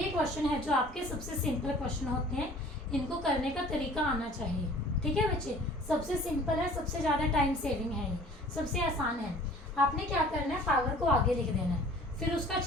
क्वेश्चन है जो आपके सबसे सिंपल क्वेश्चन होते हैं, इनको करने का तरीका आना चाहिए। ठीक है बच्चे, सबसे सिंपल है, सबसे ज़्यादा टाइम सेविंग है, ये सबसे आसान है। आपने क्या करना है, पावर को आगे लिख देना है, फिर उसका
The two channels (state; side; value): normal; both; correlation 0.49